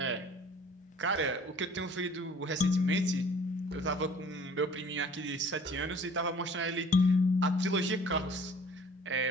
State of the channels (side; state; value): both; normal; correlation 0.51